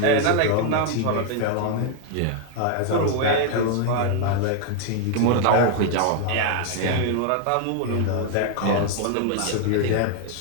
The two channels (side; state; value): both; different; correlation 0.00